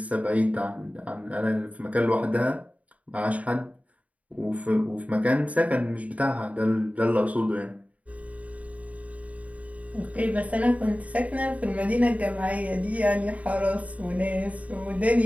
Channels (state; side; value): late; left; 0.069 ms